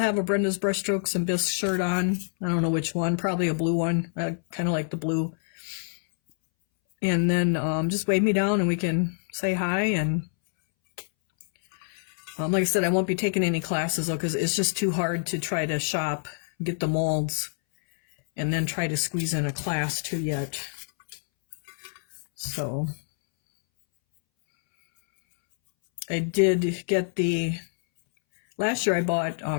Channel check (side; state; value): right; silent; 61 dB below the other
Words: a Brenda's Brushstrokes and Bisque shirt on. I don't know which one, probably a blue one. I kind of like the blue. And then just wave me down and we can say hi. And like I said, I won't be taking any classes though, because it's just too hard to try to shop, get the molds, and then try to squeeze in a class too yet. So I did get last year I bought